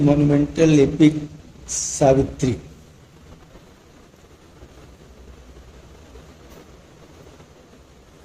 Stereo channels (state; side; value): identical; both; correlation 1.00